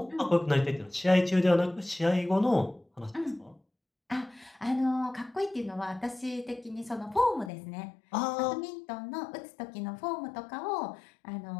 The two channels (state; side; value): drops out; right; at 7.5 s